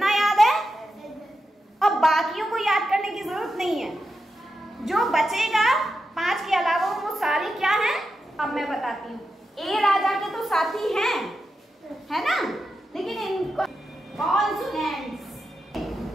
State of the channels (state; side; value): normal; both; correlation 0.88